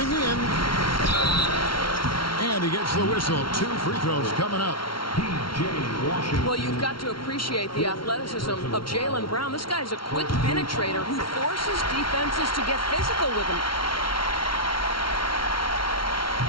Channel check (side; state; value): right; late; 0.74 ms